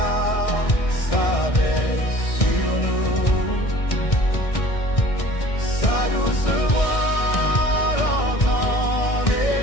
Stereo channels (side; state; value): right; late; 1.6 ms